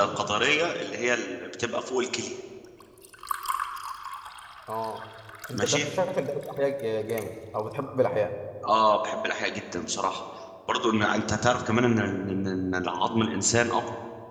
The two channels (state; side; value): identical; both; correlation 1.00